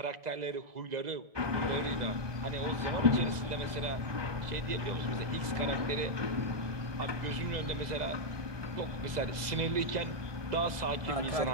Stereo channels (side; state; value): left; late; 2.0 ms